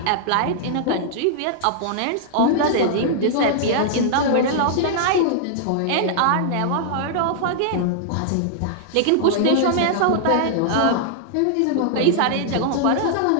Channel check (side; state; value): both; different; correlation -0.01